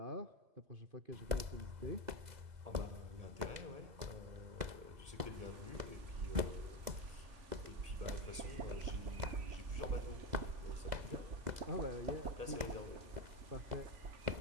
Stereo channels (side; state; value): left; late; 2.0 ms